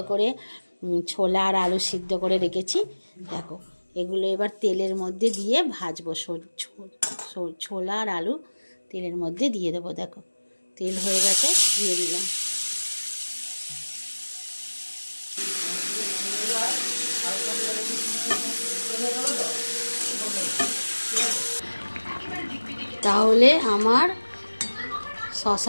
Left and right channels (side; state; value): both; inverted; correlation -1.00